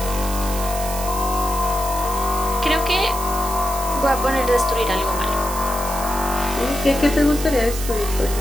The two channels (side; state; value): right; noise; hiss, 8 dB below the sound